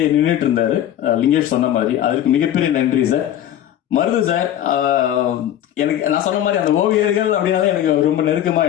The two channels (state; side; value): quieter; right; 11.4 dB